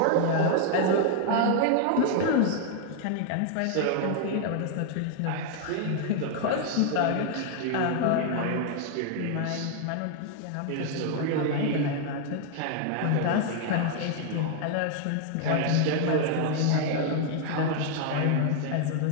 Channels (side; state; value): both; different; correlation 0.00